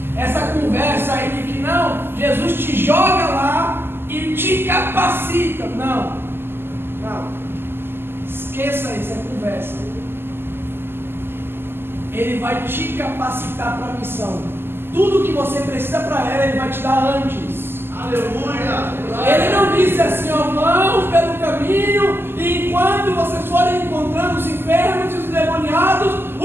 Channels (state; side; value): late; left; 0.11 ms